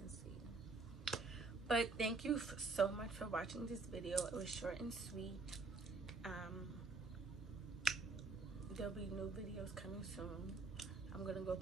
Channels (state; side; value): quieter; left; 3.8 dB